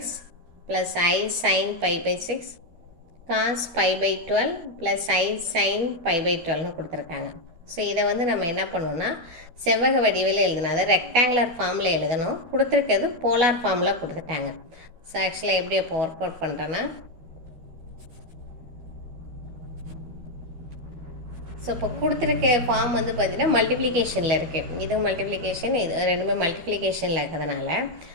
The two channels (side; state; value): left; late; 12 ms